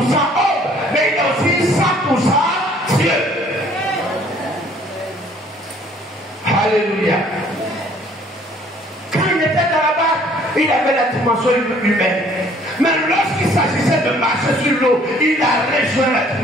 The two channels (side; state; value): both; normal; correlation 0.58